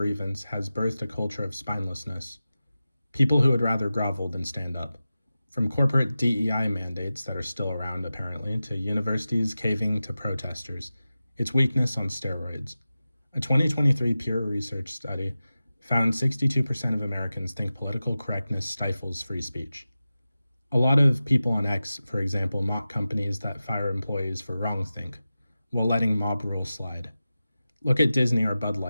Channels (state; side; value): inverted; both; correlation -0.94